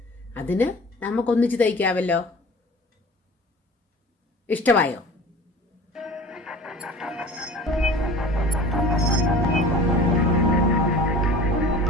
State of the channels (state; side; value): normal; both; correlation 0.41